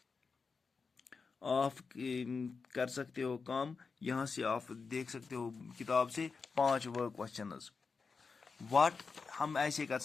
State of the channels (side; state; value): right; quieter; 4.9 dB